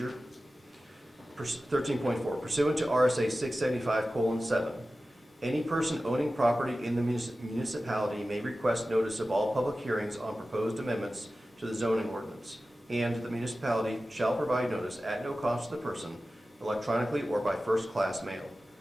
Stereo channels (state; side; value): normal; both; correlation 0.95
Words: 13.4, pursuant to RSA 675:7, any person owning property in the municipality may request notice of all public hearings on proposed amendments to the zoning ordinance, and the municipality shall provide notice at no cost to the person, electronically or by first-class mail.